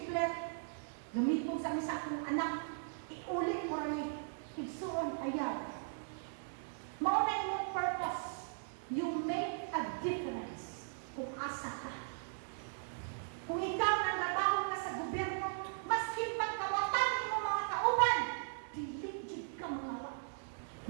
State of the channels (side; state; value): left; silent; digital silence